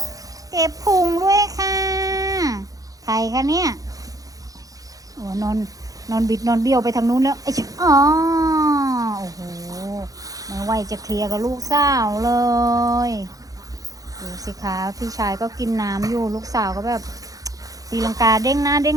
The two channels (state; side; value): late; left; 0.17 ms